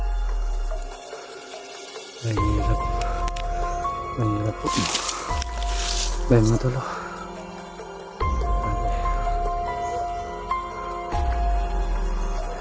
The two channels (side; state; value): both; identical; correlation 1.00